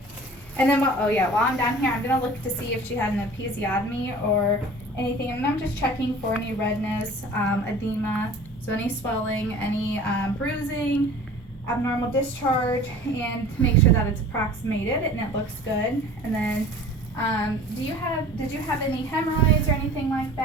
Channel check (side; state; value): both; normal; correlation 0.43